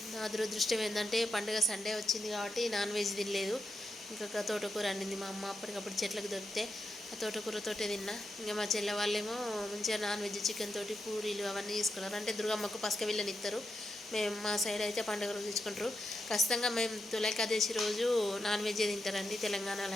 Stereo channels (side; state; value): both; normal; correlation 0.85